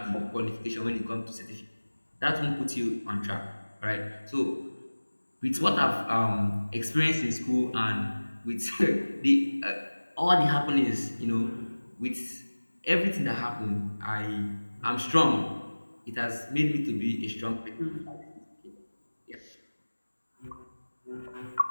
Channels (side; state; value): both; inverted; correlation -1.00